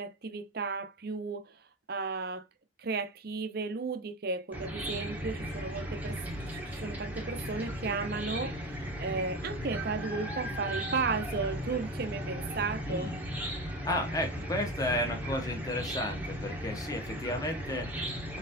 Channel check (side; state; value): both; normal; correlation 0.25